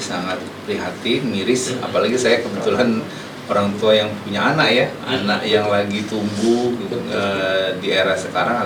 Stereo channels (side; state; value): both; identical; correlation 1.00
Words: prihatin, miris, apalagi saya kebetulan orang tua yang punya anak ya, anak yang lagi tumbuh di era sekarang